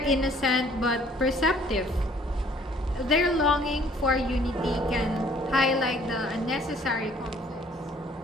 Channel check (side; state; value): both; normal; correlation 0.58